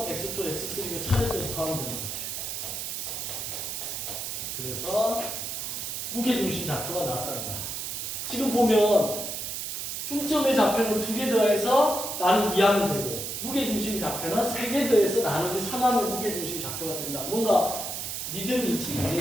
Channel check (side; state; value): right; noise; hiss, 4 dB below the sound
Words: x2, x3가 차례대로 더하면 되는 거지. 그래서 무게중심 좌표가 나왔다는 거야. 지금 보면 중점의 좌표는 2개 더해서 나누기 2하면 되고 무게중심 좌표는 3개 더해서 나누기 3하면 무게중심 좌표가 된다. 뭔가 리듬이 있지,